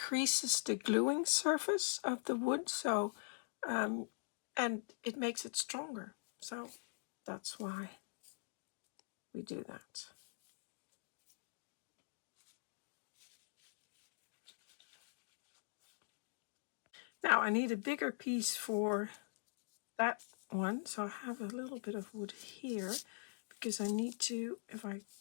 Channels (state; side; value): silent; right; digital silence